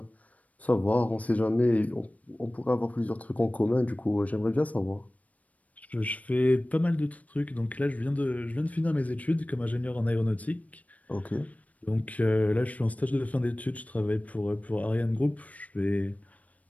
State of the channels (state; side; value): late; right; 0.070 ms